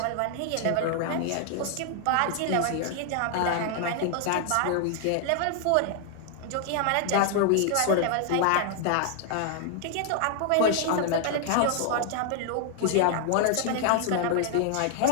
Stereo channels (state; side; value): different; both; correlation 0.00